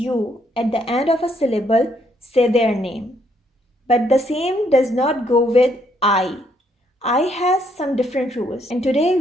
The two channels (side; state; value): both; normal; correlation 0.71